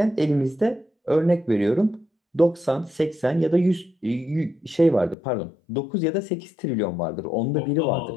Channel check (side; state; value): right; drops out; at 5.2 s